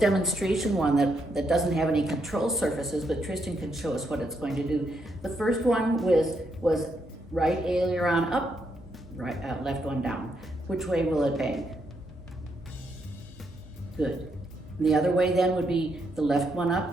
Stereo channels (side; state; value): both; normal; correlation 0.78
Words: one that doesn't have any control surfaces, but Tristan can show us what it's going to do. The first one was right aileron up, right left one down. Which way will it bank? Good. And the other way then would be the left one